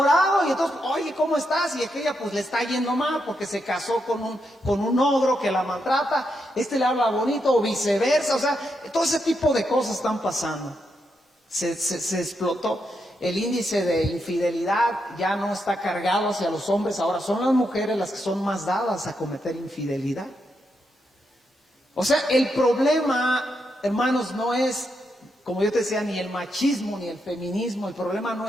y entonces, oye, ¿cómo estás? Y aquella pues le está yendo mal porque se casó con un ogro que la maltrata, le habla bonito, o viceversa. O sea, todo ese tipo de cosas están pasando. Se explotó. El índice de infidelidad ya no está cargado hacia los hombres, ahora son las mujeres las que son más dadas a cometer infidelidad. O sea, el problema, hermanos, no es, como yo te decía, ni el machismo ni el feminismo. El problema no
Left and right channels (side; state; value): both; normal; correlation 0.82